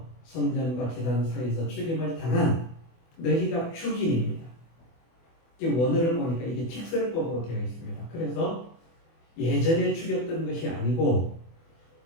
성전과 제단 사이에서 죽임을 당한 너희가 죽인입니다. 원어를 보니까 이게 직설법으로 되어 있습니다. 그래서 예전에 죽였던 것이 아니고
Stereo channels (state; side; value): late; right; 24 ms